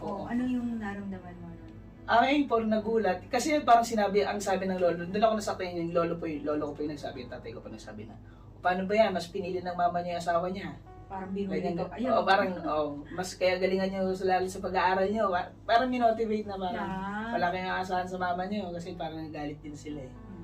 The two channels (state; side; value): identical; both; correlation 1.00